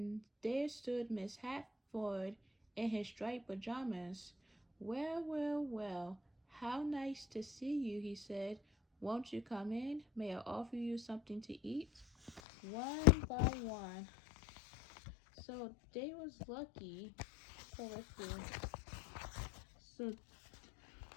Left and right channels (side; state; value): right; drops out; at 12.4 s